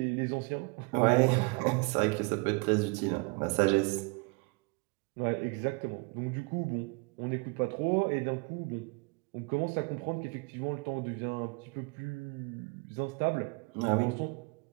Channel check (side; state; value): left; quieter; 29.6 dB